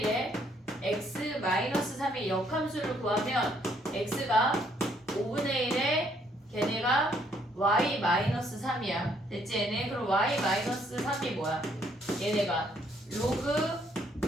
1의 x-3의 역함수를 구하면 x가 5분의 1의 걔네가 y-3이야. 됐지 얘네? 그럼 y-3이 뭐야? 얘네가 로그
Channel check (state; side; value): normal; both; correlation 0.68